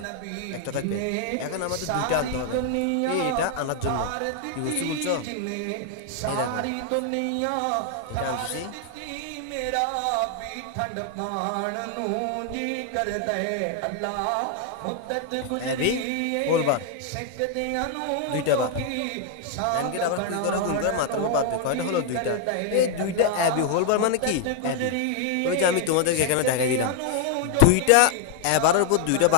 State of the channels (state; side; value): different; both; correlation 0.00